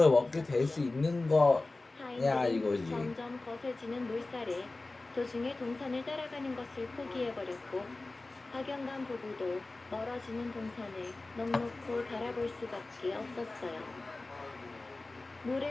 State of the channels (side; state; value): right; quieter; 3.2 dB